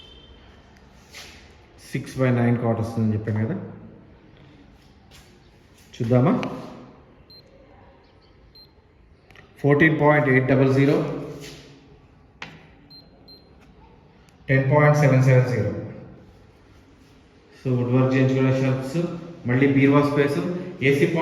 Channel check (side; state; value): both; identical; correlation 1.00